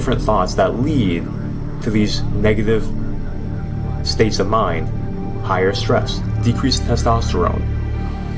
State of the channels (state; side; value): identical; both; correlation 1.00